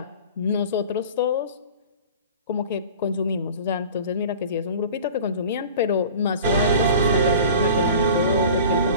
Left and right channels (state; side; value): inverted; both; correlation -0.41